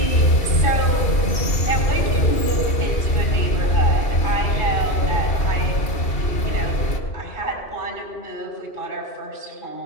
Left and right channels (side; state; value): right; late; 2.7 ms